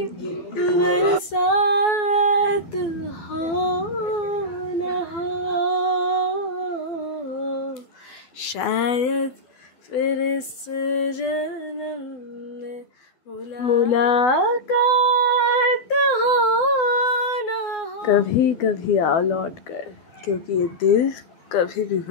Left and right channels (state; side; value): late; right; 12 ms